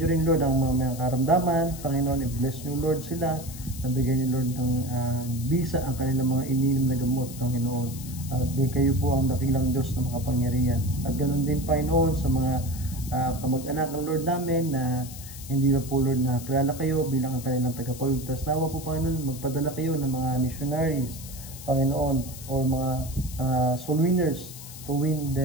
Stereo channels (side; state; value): left; noise; hiss, 14 dB below the sound